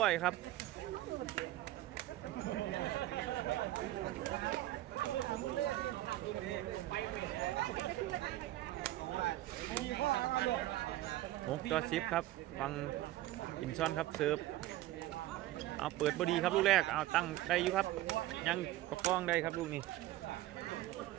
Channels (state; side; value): quieter; left; 15.6 dB